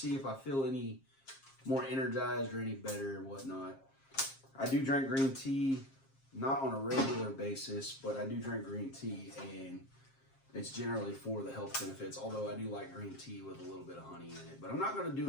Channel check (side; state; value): right; late; 7.5 ms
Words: if I feel any more energized or any better and whatnot. I do drink green tea, not on a regular basis, but I do drink green tea, and it's generally for the health benefits, although I do like green tea with a little bit of honey in it. But I'm not going to do